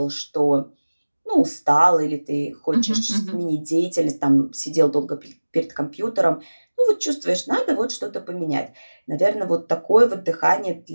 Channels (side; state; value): both; inverted; correlation -1.00